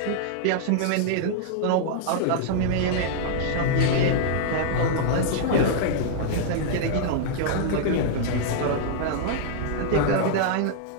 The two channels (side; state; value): both; different; correlation -0.01